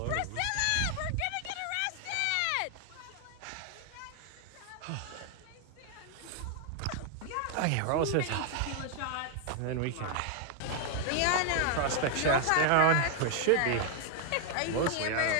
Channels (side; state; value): both; different; correlation 0.00